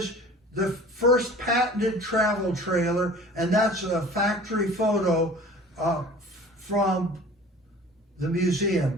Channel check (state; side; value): normal; both; correlation 0.44